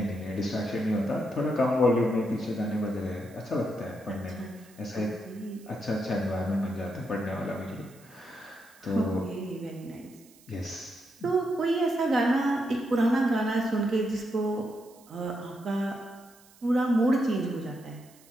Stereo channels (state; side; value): noise; right; hiss, 26 dB below the sound